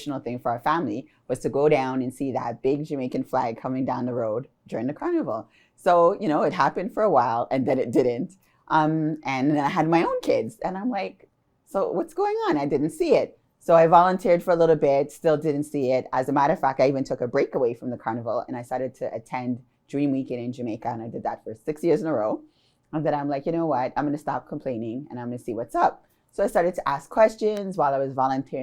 thing for our family was to go down and see that big Jamaican flag coming down the road during the carnival. So, you know, it happened for a while and then it didn't. And then I had my own kids and I'm like, so what's going on? I didn't see it. So I volunteered for a little bit, still didn't see it. As a matter of fact, I even took a break away from the carnival and I started to attend Dream Weekend in Jamaica. And I did that for 6 years in a row. And then I'm like, you know what? I'm going to stop complaining and I'm going to see what's up. So I started to ask questions while I was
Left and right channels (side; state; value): both; identical; correlation 1.00